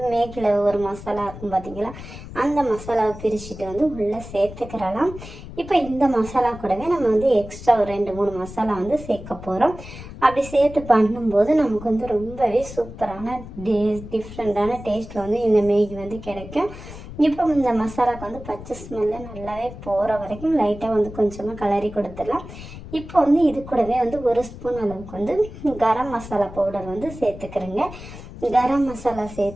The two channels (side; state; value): left; noise; rumble, 13 dB below the sound